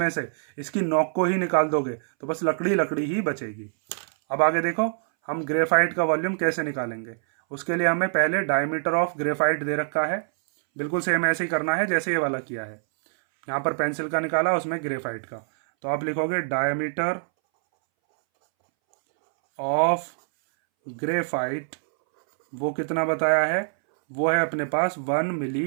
से इसकी नोक को ही निकाल दोगे तो बस लकड़ी लकड़ी ही बचेगी। अब आगे देखो हम ग्रेफाइट का वॉल्यूम कैसे निकालेंगे। उसके लिए हमें पहले डायमीटर ऑफ ग्रेफाइट दे रखा है, बिल्कुल सेम ऐसे ही करना है जैसे ये वाला किया है। यहाँ पर पेंसिल का निकाला, उसमें ग्रेफाइट का। तो आप लिखोगे डायमीटर ऑफ ग्रेफाइट, वो कितना बताया है, वो है अपने पास 1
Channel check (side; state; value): left; silent; 62 dB below the other